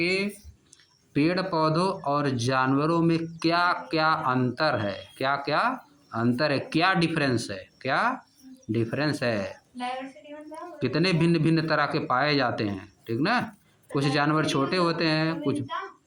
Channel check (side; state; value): both; identical; correlation 1.00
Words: पेड़ पौधों और जानवरों में क्या क्या अंतर है, क्या क्या अंतर है, क्या डिफरेंस है, क्या डिफरेंस है, कितने भिन्न भिन्न तरह के पाए जाते हैं, ठीक ना। कुछ जानवर छोटे होते हैं, कुछ